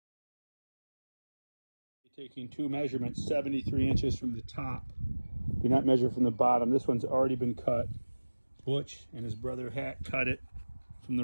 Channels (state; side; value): inverted; both; correlation -1.00